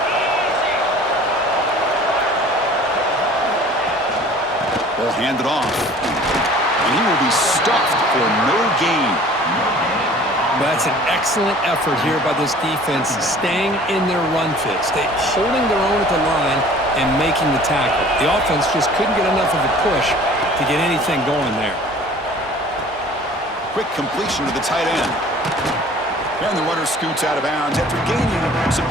Ball handed off. And he will be stuffed for no gain. That's an excellent effort here by this defense, staying in their run fit, holding their own at the line and making the tackle. The offense just couldn't get enough of a push to get anything going there. Quick completion to the tight end. And the runner scoots out of bounds after gaining some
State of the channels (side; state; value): both; normal; correlation 0.48